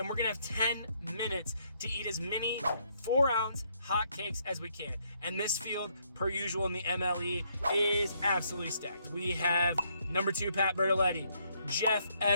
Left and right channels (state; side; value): inverted; both; correlation -0.71